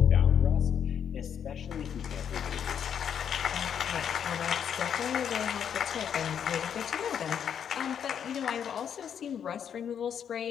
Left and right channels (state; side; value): quieter; right; 8.3 dB